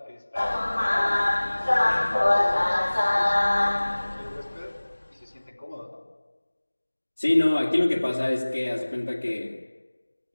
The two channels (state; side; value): inverted; both; correlation -1.00